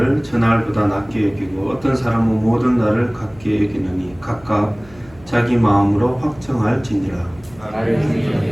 저 날보다 낮게 여기고 어떤 사람은 모든 날을 같게 여기느니 각각 자기 마음으로 확정할지니라.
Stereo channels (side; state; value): right; noise; hum, 24 dB below the sound